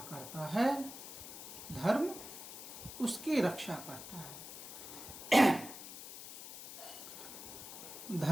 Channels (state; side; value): noise; left; hiss, 11 dB below the sound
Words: करता है धर्म उसकी रक्षा करता है।